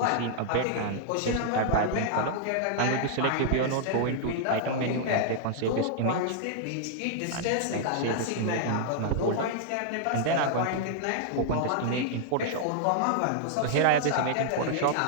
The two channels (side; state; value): both; different; correlation -0.01